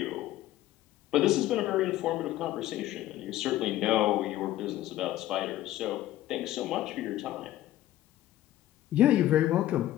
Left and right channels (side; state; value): right; quieter; 14.2 dB